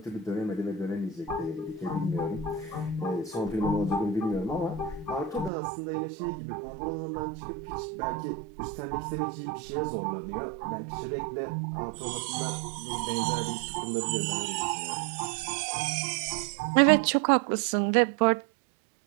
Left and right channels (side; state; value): left; drops out; at 5.5 s